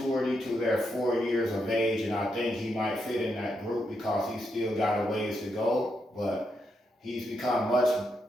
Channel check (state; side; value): normal; both; correlation 0.81